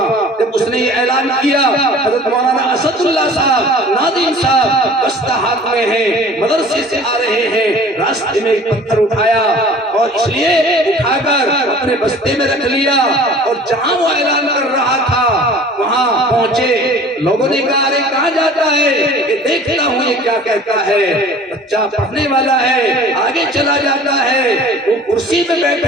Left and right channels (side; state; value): both; normal; correlation 0.46